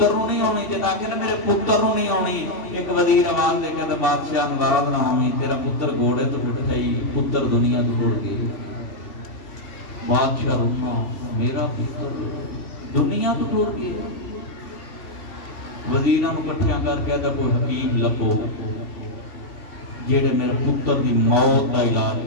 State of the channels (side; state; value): right; late; 2.7 ms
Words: نو نہیں ہونی، جتا کہ میرے پتر نو نہیں ہونی۔ ایک وزیر آواز دے کے بادشاہ ناراض نہ ہوئی، تیرا پتر گھوڑے تو ٹوٹ گئی، پتر دنیا تو ٹوٹ گئی۔ بادشاہ روما، میرا پتر دنیا تو ٹوٹ گیا۔ وزیراں نو کٹھیاں کر کے ادھا کوئی حکیم لبو جیڑے میرے پتر دی موت دا علاج